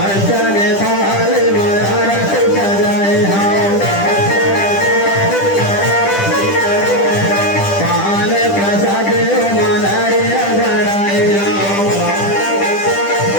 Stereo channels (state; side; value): late; right; 10 ms